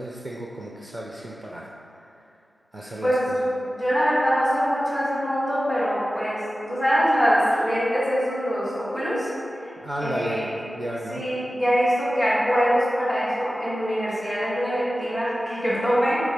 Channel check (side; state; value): both; normal; correlation 0.95